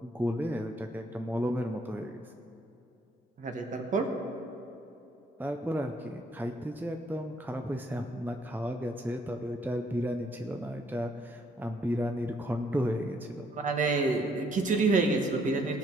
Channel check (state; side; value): normal; both; correlation 0.67